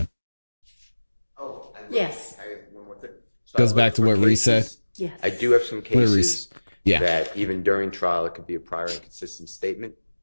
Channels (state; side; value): inverted; both; correlation -1.00